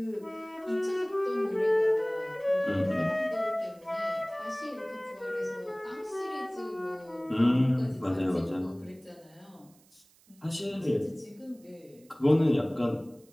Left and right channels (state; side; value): noise; right; hiss, 30 dB below the sound